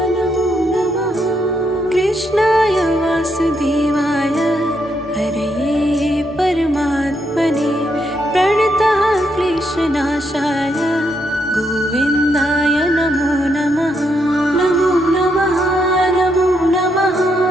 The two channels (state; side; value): normal; both; correlation 0.78